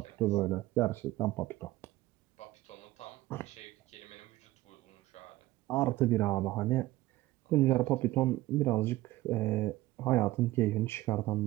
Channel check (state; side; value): quieter; left; 17.3 dB